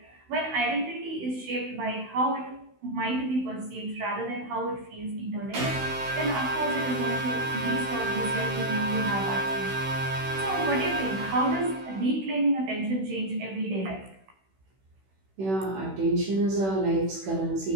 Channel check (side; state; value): left; late; 16 ms